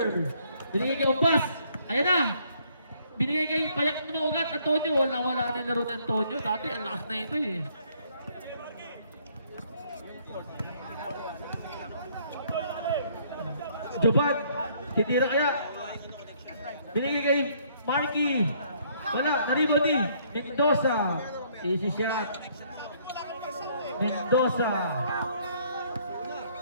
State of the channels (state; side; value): inverted; both; correlation -0.65